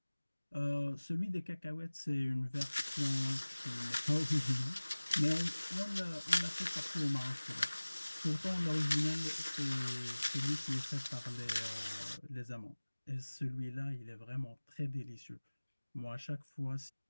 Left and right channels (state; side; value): inverted; both; correlation -1.00